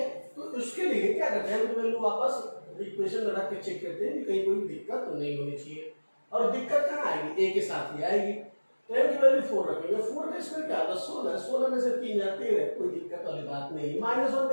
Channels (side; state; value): both; inverted; correlation -1.00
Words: तो उसके लिए क्या करते हैं, वैल्यू वापस इक्वेशन में रख के चेक करते हैं कि कहीं कोई दिक्कत तो नहीं होनी चाहिए। और दिक्कत कहाँ आएगी, a के साथ ही आएगी। तो m की वैल्यू 4 रखेंगे, 4 का स्क्वायर क्या होगा 16, 16 में से 3 जाते हैं, कोई दिक्कत वाली बात नहीं। माइनस 1